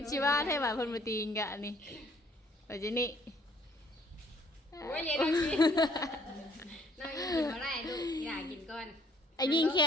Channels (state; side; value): normal; both; correlation 0.60